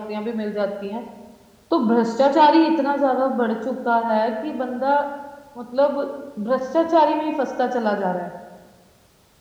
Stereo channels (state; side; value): identical; both; correlation 1.00